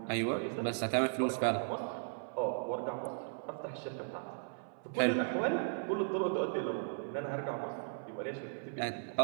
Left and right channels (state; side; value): silent; left; 54 dB below the other